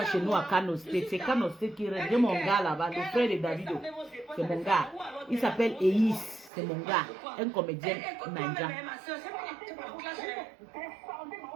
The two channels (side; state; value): left; drops out; at 6.5 s